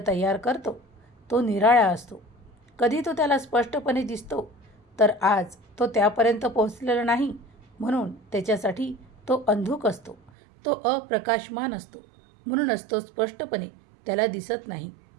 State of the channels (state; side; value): drops out; left; at 10.3 s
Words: तयार करतो, तो निराळा असतो. कधी तो त्याला स्पष्टपणे दिसतो, तर आज तो त्यापर्यंत पोहोचलेला नाही म्हणून त्याच्यासाठी तो अंधुक असतो. तो अप्रकाशमान असतो, म्हणूनच तो स्पष्टपणे त्याला दिसत नाही.